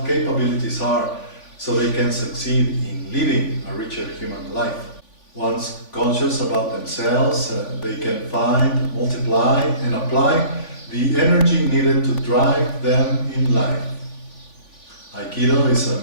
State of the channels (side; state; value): right; late; 3.5 ms